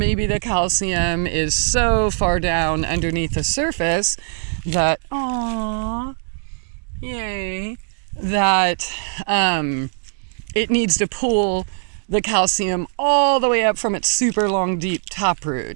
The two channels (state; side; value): silent; left; digital silence